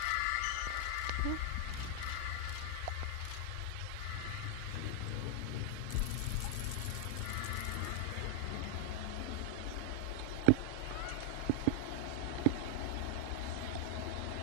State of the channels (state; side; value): different; both; correlation 0.00